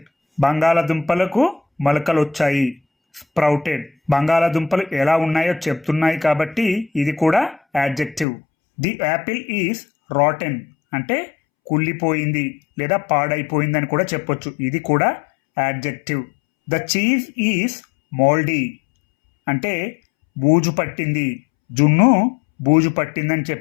బంగాళదుంపలకు మొలకలు వచ్చాయి. స్ప్రౌటెడ్, బంగాళదుంపలు ఎలా ఉన్నాయో చెప్తున్నాయి కాబట్టి ఇది కూడా adjective. The Apple is rotten అంటే కుళ్ళిపోయింది లేదా పాడైపోయిందని కూడా చెప్పొచ్చు, ఇది కూడా యాడ్జెక్టివ్. ద చీజ్ ఈజ్ మోల్డీ అంటే బూజు పట్టింది, జున్ను బూజు పట్టిందని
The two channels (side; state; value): right; drops out; at 8.2 s